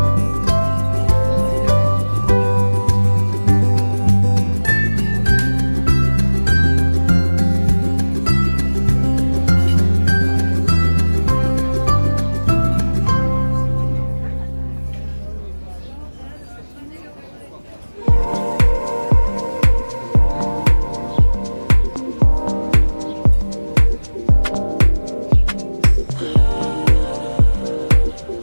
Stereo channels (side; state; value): both; inverted; correlation -1.00